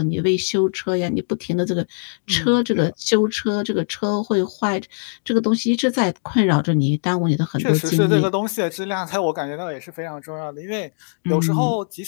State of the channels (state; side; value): silent; right; digital silence